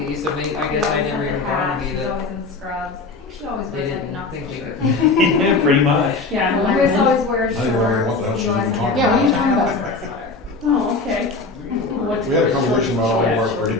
so maybe, I guess I never even dawned on me She's that always in scrubs. I think she always they wears like a didn't Knoxville think shirt. they Pretty much. Yeah. Well, Chris always wears Now shorts. you're wondering what the hell She she's always even has talking a Yeah, what are you sweater. talking I about? always wear a sweater. Oh, okay. What's We had a the conversation short about all of our shorts?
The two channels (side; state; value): right; quieter; 3.7 dB